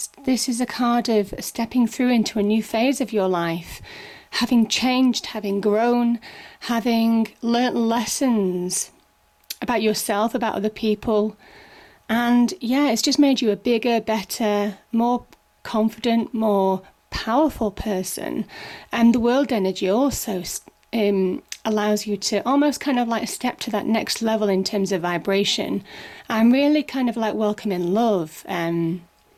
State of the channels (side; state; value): both; identical; correlation 1.00